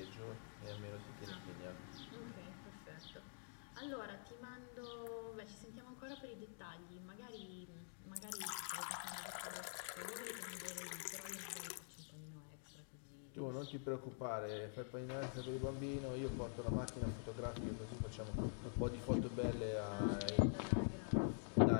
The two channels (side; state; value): right; silent; digital silence